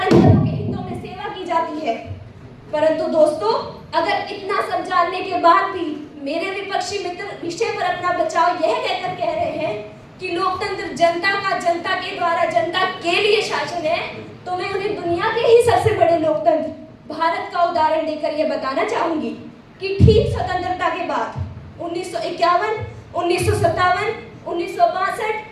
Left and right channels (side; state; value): both; identical; correlation 1.00